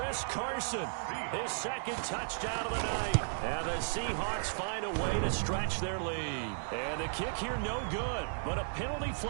Carson, his 2nd touchdown of the night. And the Seahawks find a way to stretch their lead. And the kick here no good, but a penalty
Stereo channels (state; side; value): silent; left; digital silence